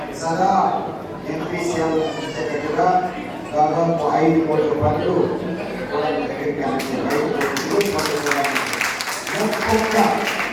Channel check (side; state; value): both; identical; correlation 1.00